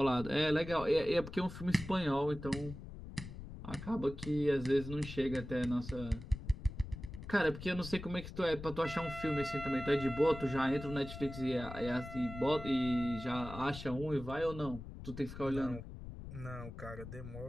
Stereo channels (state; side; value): noise; left; rumble, 11 dB below the sound